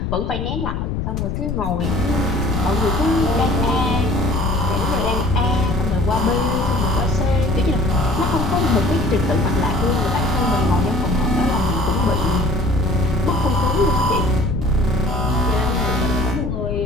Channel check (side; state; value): left; noise; rumble, 3 dB below the sound